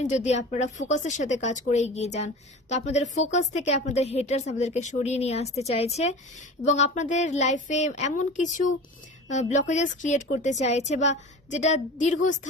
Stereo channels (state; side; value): normal; both; correlation 0.35